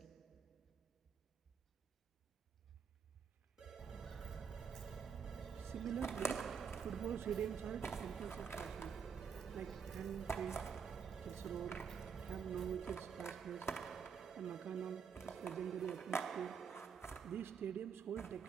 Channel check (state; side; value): quieter; left; 6.5 dB